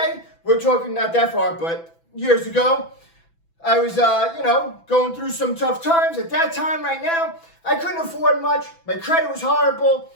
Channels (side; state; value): right; late; 6.0 ms